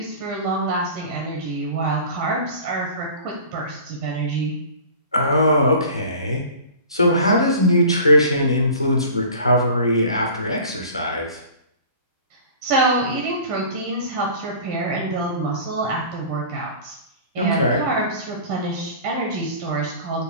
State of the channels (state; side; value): inverted; both; correlation -0.41